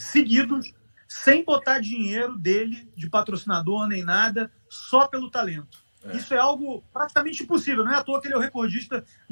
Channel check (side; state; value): both; inverted; correlation -1.00